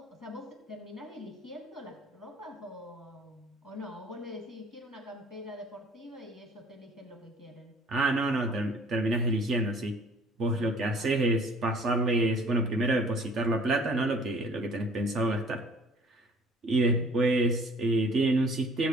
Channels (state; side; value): normal; both; correlation 0.53